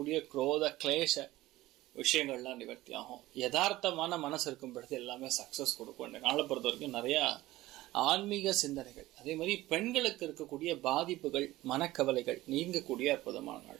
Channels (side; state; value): left; quieter; 17.2 dB